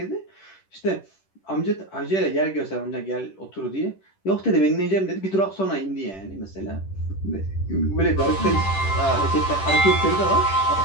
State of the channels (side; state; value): right; late; 10 ms